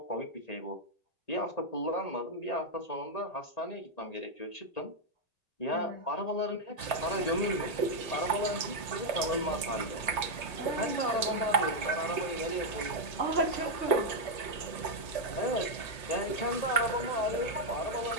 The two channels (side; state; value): right; late; 1.9 ms